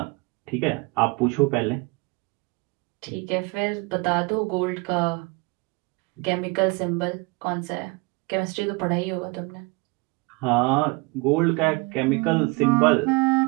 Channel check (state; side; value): quieter; left; 26.4 dB